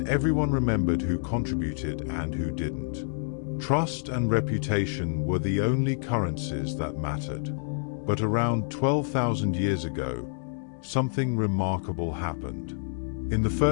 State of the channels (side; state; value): right; silent; digital silence